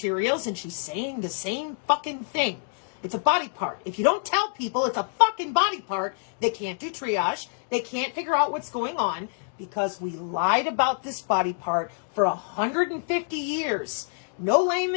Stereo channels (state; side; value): silent; right; digital silence